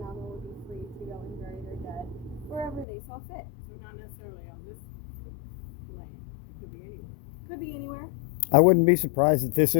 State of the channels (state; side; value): drops out; right; at 2.9 s